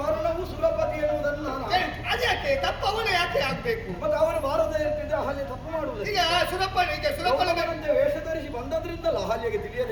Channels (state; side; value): identical; both; correlation 1.00